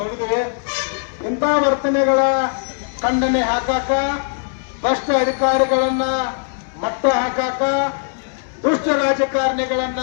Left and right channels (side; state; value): right; silent; digital silence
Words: ಇಂಥ ವರ್ತನೆಗಳ ಖಂಡನೆ ಹಾಕಾಕ, ಭ್ರಷ್ಟ ಅಧಿಕಾರಿಗಳನ್ನ ಮಟ್ಟ ಹಾಕಾಕ, ದುಷ್ಟ ರಾಜಕಾರಣಿಗಳನ್ನ